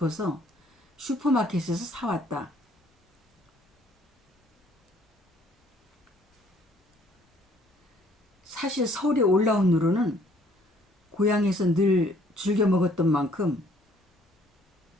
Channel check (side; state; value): both; normal; correlation 0.61